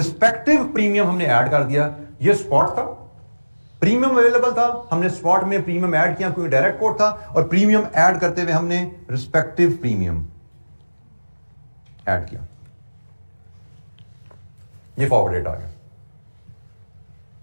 प्रीमियम हमने ऐड कर दिया। ये स्पॉट था, प्रीमियम अवेलेबल था, हमने स्पॉट में प्रीमियम ऐड किया क्योंकि डायरेक्ट कोट था, और प्रीमियम ऐड करते हुए हमने रिस्पेक्टिव प्रीमियम ऐड किया। ये फॉरवर्ड रेट आ गया।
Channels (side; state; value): both; inverted; correlation -1.00